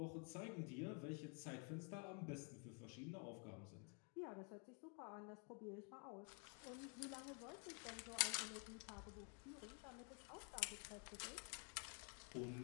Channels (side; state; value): right; quieter; 39.6 dB